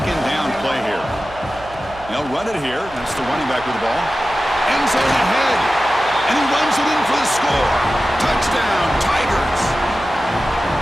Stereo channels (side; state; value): right; noise; hum, 19 dB below the sound